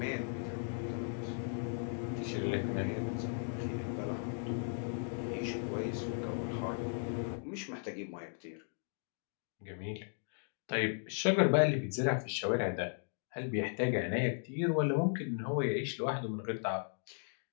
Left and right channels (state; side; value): silent; right; 53 dB below the other